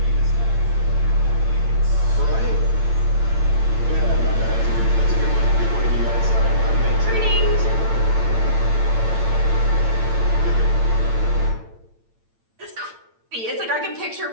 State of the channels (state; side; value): late; left; 8.9 ms